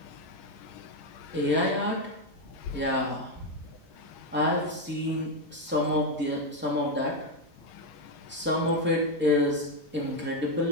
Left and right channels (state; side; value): normal; both; correlation 0.06